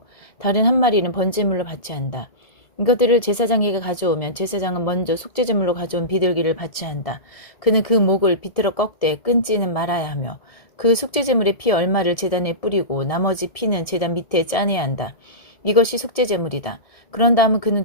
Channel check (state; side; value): late; right; 1.7 ms